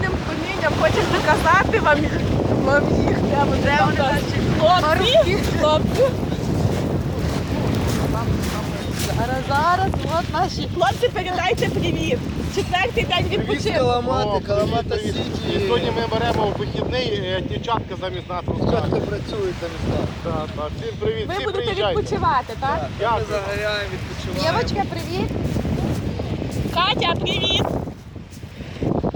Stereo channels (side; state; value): both; identical; correlation 1.00